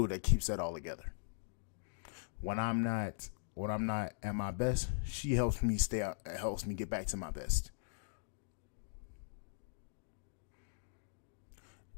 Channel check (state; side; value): silent; right; digital silence